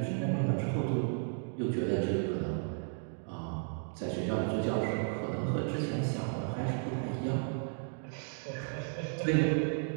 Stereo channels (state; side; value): silent; left; 55 dB below the other